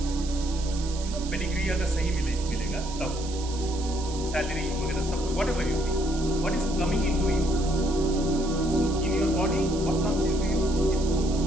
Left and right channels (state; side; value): noise; right; hiss, 13 dB below the sound